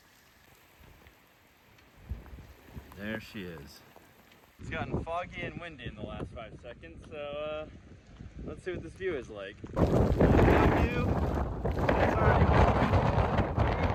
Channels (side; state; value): both; identical; correlation 1.00